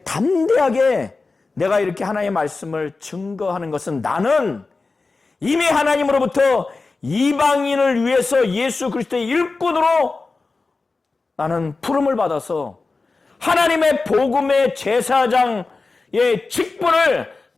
담대하게 내가 이렇게 하나님의 말씀을 증거하는 것은 나는 이미 하나님으로부터 이방인을 위해서 예수 그리스도의 일꾼으로 나는 부름을 받아서 하나님의 복음의 제사장의 직분을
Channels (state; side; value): quieter; right; 3.8 dB